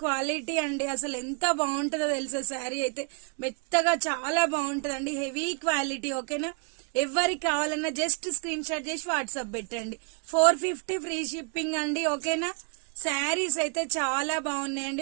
క్వాలిటీ అండి. అసలు ఎంత బాగుంటుందో తెలుసా శారీ అయితే. మెత్తగా చాలా బాగుంటుందండి, హెవీ క్వాలిటీ. ఓకేనా, ఎవరికి కావాలన్నా జస్ట్ స్క్రీన్ షాట్ చేసి వాట్సాప్ పెట్టండి. 450 ఫ్రీ షిప్పింగ్ అండి. ఓకేనా, శారీస్ అయితే చాలా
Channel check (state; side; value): quieter; left; 39.9 dB